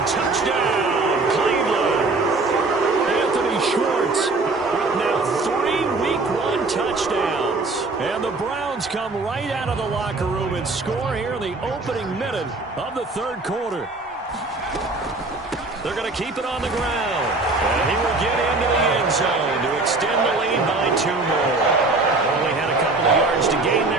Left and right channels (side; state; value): left; quieter; 3.4 dB